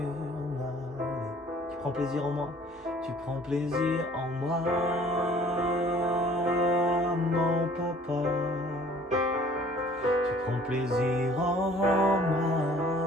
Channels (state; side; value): normal; both; correlation 0.54